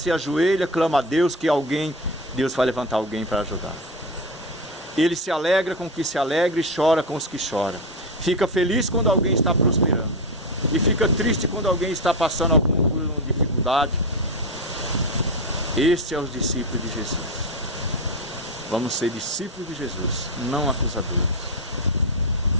ajoelha, clama a Deus que Deus vai levantar alguém para ajudar. Ele se alegra com os que se alegram e chora com os que choram. Fica feliz quando alguém está prosperando. E fica triste quando alguém está passando alguma dificuldade. Este é os discípulos de Jesus. Vamos ser discípulos de Jesus, não acusadores.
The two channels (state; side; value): normal; both; correlation 0.16